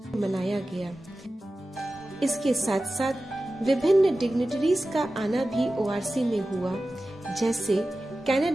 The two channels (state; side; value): normal; both; correlation 0.95